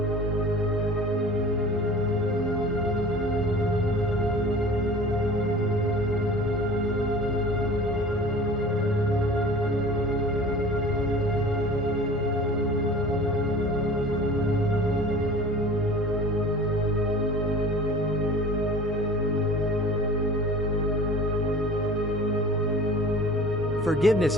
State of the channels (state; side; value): normal; both; correlation 0.42